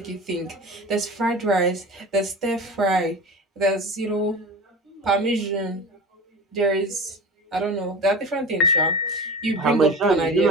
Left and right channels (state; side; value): normal; both; correlation 0.33